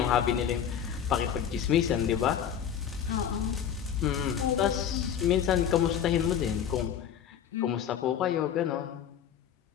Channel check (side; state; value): right; quieter; 8.9 dB